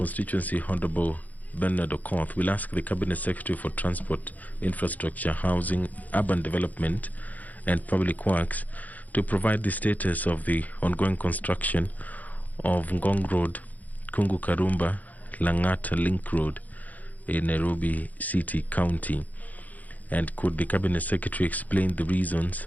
Honorable Bernard Okoth, will ask the Cabinet Secretary for Transport, Infrastructure, Housing, Urban Development and Public Works to provide the status of the ongoing construction of Ngong Road, Kungu Karumba, Langata Link Road in Nairobi City County. And could the Cabinet Secretary explain the reasons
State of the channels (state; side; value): late; right; 0.079 ms